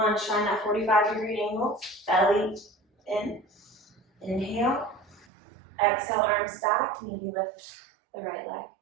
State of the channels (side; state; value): left; drops out; at 5.2 s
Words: find that 45-degree angle. Belly in. Inhale. Exhale, arms back. Maybe lift the right leg.